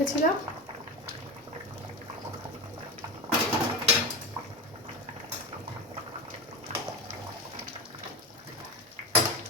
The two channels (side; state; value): both; normal; correlation 0.22